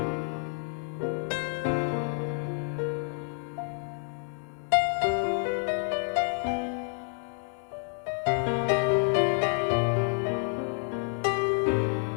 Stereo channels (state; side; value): silent; right; 56 dB below the other